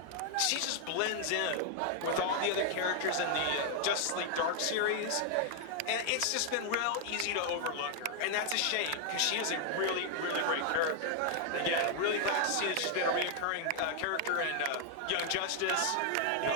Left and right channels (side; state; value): both; different; correlation 0.00